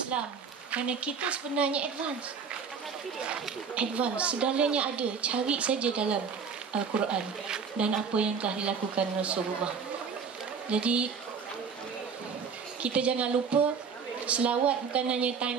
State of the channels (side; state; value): left; quieter; 6.0 dB